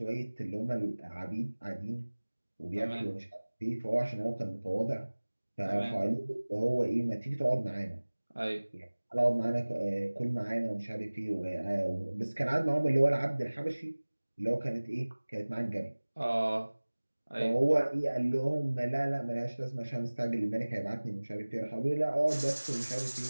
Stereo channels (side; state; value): both; inverted; correlation -1.00